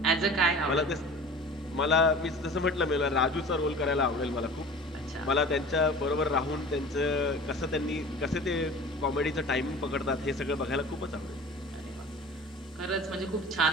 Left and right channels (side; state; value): both; normal; correlation 0.41